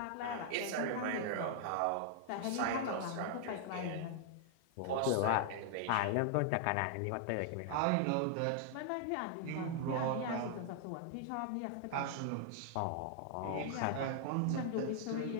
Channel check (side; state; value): both; different; correlation -0.01